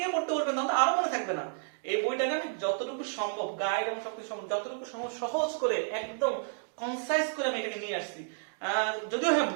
পড়তে বলবেন তখন তো আরো মনে থাকবে না। এই বইটাকে আমি যতটুকু সম্ভব গাইড এবং সবকিছু সম্ভব যতটুকু সম্ভব সহজ করে একদম কনসাইজ করে আমি এটাকে নিয়ে আসছি। যদিও হ্যাঁ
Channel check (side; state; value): left; silent; digital silence